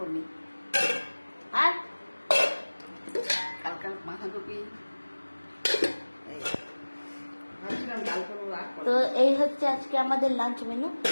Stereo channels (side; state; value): both; inverted; correlation -1.00